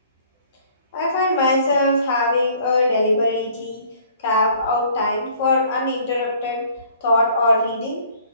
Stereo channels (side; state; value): both; inverted; correlation -0.56